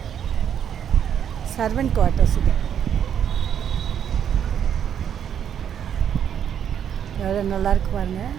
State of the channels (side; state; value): left; quieter; 8.8 dB